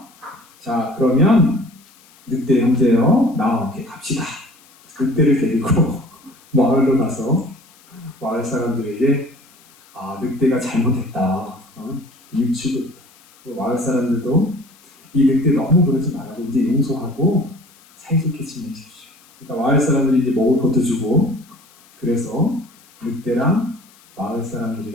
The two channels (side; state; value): left; noise; hiss, 28 dB below the sound